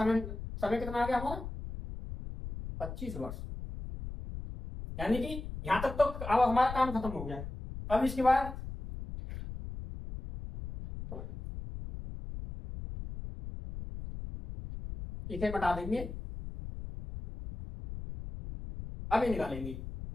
समय कितना आ गया हमारा 25 वर्ष, यानी कि यहां तक तो अब हमारा काम खत्म हो गया। अब इसके बाद इसे मिटा देंगे, अब ये निकालेंगे।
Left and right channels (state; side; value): noise; left; rumble, 9 dB below the sound